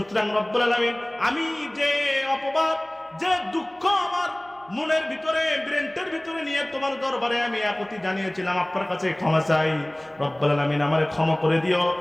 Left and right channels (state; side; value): noise; right; hum, 30 dB below the sound